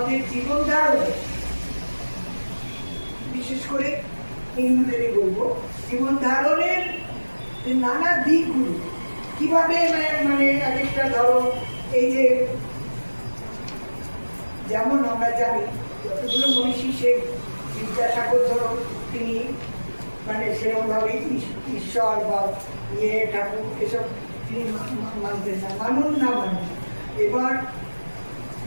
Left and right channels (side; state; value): both; inverted; correlation -1.00